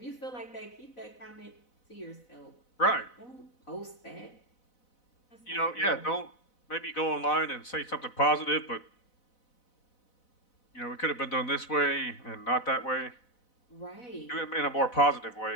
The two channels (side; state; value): right; late; 4.0 ms